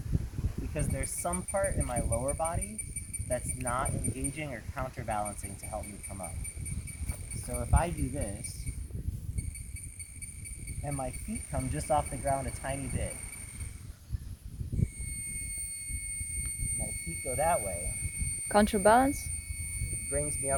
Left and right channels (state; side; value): identical; both; correlation 1.00